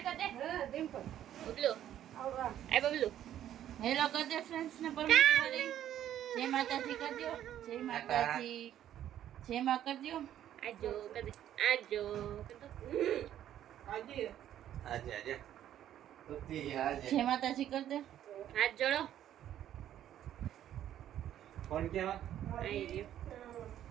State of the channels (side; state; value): left; quieter; 11.3 dB